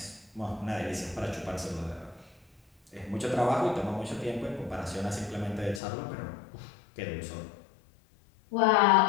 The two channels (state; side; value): drops out; right; at 5.8 s